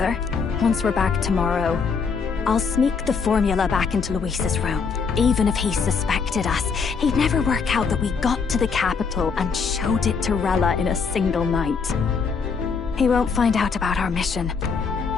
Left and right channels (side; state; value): right; quieter; 5.5 dB